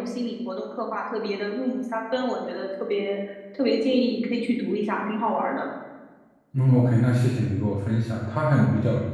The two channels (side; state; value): both; identical; correlation 1.00